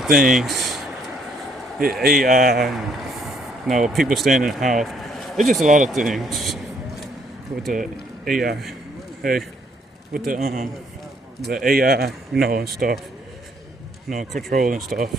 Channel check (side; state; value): both; normal; correlation 0.67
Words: things. AI, people staying in the house. It's just a lot of things with the AI. Hey, with the AI, and stuff. Control and stuff.